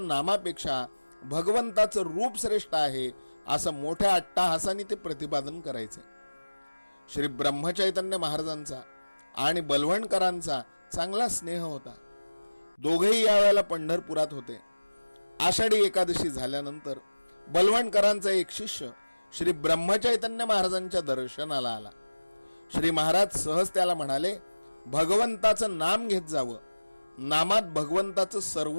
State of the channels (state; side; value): inverted; both; correlation -1.00